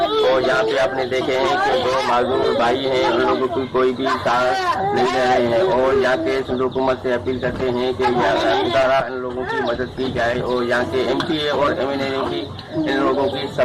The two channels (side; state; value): both; identical; correlation 1.00